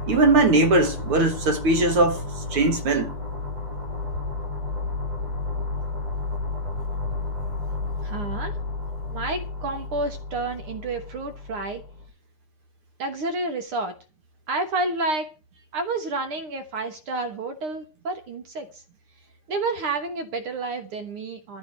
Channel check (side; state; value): left; late; 6.7 ms